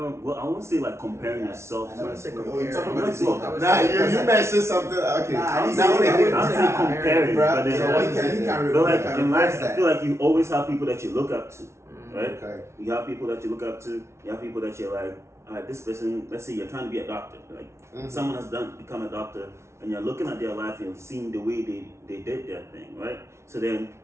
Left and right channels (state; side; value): late; left; 0.13 ms